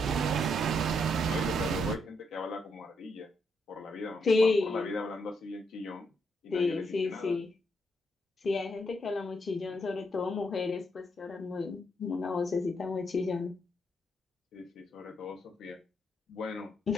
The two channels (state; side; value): normal; both; correlation 0.78